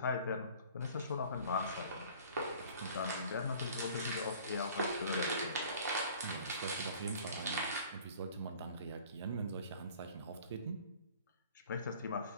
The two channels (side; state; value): both; inverted; correlation -0.49